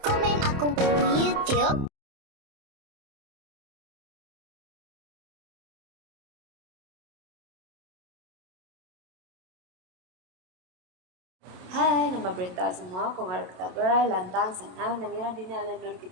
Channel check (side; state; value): left; late; 27 ms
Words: aku di YouTube. Hai, nama berita semua, kung harap kita gerai lantang sana nangira dini alenur